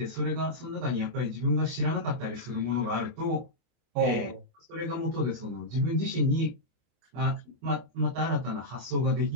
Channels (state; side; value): late; left; 24 ms